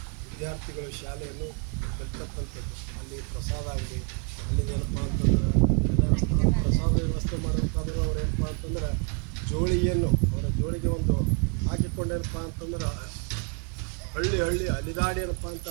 ವಿದ್ಯಾರ್ಥಿಗಳು ಶಾಲೆಯನ್ನು ಕಲಿತಕ್ಕಂಥದ್ದು. ಅಲ್ಲಿ ಪ್ರಸಾದ ಆಗಲಿ ಅಲ್ಲಿ ಏನಪ್ಪ ಅಂತಂದ್ರೆ ಪ್ರಸಾದ ವ್ಯವಸ್ಥೆ ಮಾಡೋಕ್ಕಾದ್ರೆ ಅವ್ರು ಏನಪ್ಪ ಅಂತಂದ್ರೆ ಜೋಳಿಗೆಯನ್ನು ಅವರ ಜೋಳಿಗೆ ಒಂದು ಹಾಕಿಕೊಂಡೇನಪ್ಪ ಅಂತಂದ್ರೆ ಹಳ್ಳಿ ಅಲಿದಾಡಿ ಏನಪ್ಪ ಅಂತ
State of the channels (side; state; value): left; quieter; 37.5 dB